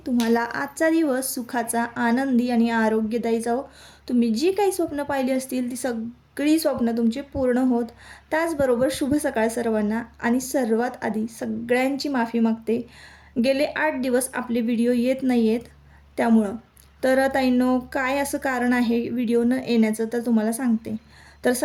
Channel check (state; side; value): identical; both; correlation 1.00